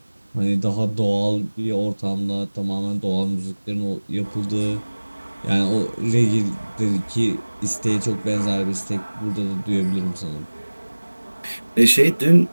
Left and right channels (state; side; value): inverted; both; correlation -1.00